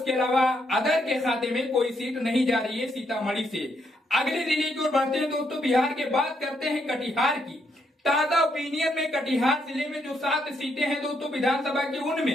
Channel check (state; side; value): normal; both; correlation 0.76